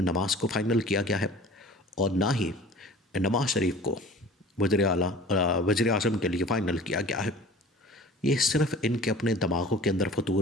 نواز کو فائنل کیا گیا ہے اور نہ ہی نواز شریف کو وزیر اعظم کے لیے فائنل کیا گیا ہے. یہ صرف ان کے اپنے دماغوں کے اندر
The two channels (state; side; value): normal; both; correlation 0.43